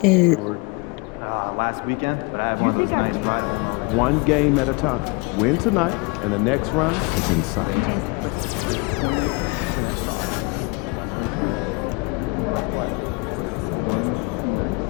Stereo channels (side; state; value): right; quieter; 28.5 dB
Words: Last weekend, but I have one tonight. One game at a time. Win tonight, and the next round is in sight.